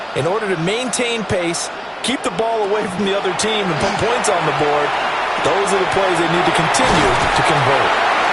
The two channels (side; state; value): both; identical; correlation 1.00